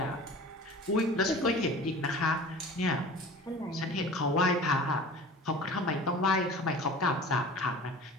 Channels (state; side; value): normal; both; correlation 0.40